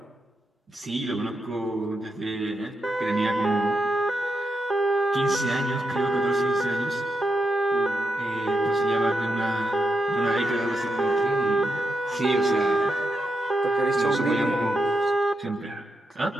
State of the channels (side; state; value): both; normal; correlation 0.85